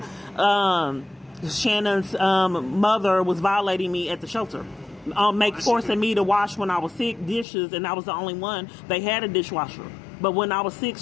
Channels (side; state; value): right; drops out; at 7.5 s